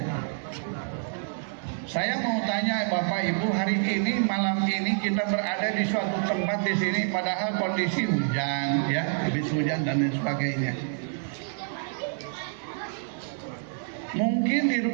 Saya mau tanya Bapak Ibu, hari ini malam ini kita berada di suatu tempat di sini, padahal kondisi hujan, ya, habis hujan dan lain sebagainya. Mungkin di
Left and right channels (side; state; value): left; silent; digital silence